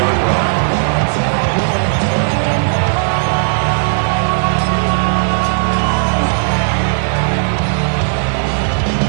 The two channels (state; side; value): silent; left; digital silence